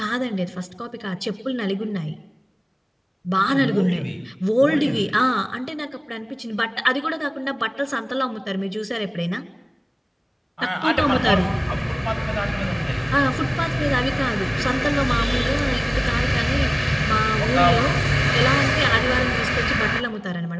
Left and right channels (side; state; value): both; identical; correlation 1.00